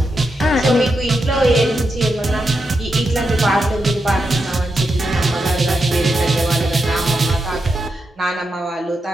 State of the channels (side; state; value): both; normal; correlation 0.86